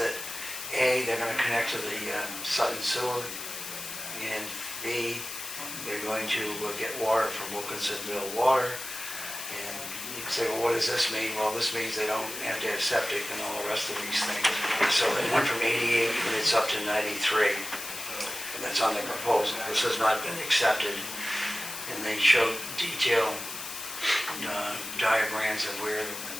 A, they're going to connect to the Sutton sewer, and B, they're going to get water from Wilkinsonville Water. And you can say, well, what does this mean? Well, this means they don't have to have septic and all the rest of these things. So they went from 88 units up to 93. And that's on the proposal. This has not been accepted. And they showed detailed diagrams of where,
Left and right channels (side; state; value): left; noise; hiss, 8 dB below the sound